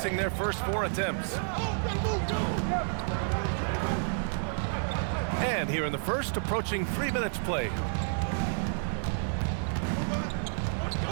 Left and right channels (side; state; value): left; silent; 58 dB below the other